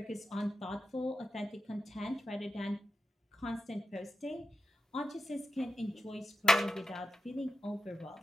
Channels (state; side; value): normal; both; correlation 0.91